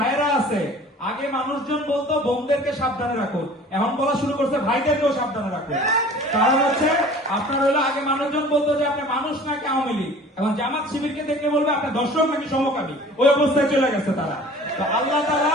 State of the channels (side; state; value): both; normal; correlation 0.46